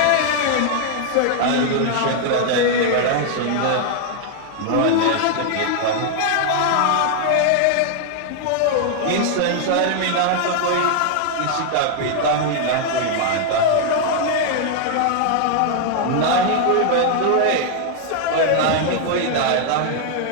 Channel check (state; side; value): different; both; correlation 0.00